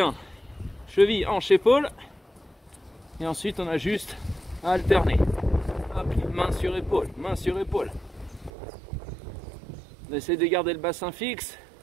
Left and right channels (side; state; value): left; drops out; at 8.5 s